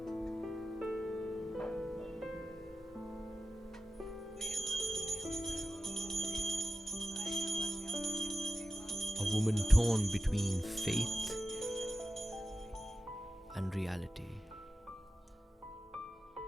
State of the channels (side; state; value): both; normal; correlation 0.92